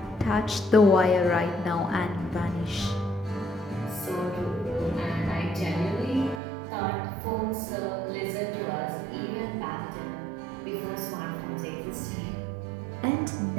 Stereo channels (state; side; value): drops out; left; at 6.4 s